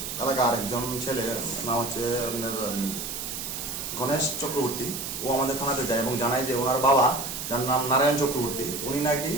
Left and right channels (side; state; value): right; noise; hiss, 6 dB below the sound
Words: এলাকার একজন ছেলে, নাম হচ্ছে আপনার গণেশ চক্রবর্তী। ও আমাদের থানাতে যায় এবং জানায় যে ওনার বাবা, যার নাম নারায়ণ চক্রবর্তী, উনি নাকি